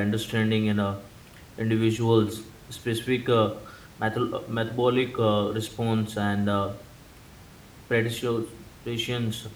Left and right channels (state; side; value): identical; both; correlation 1.00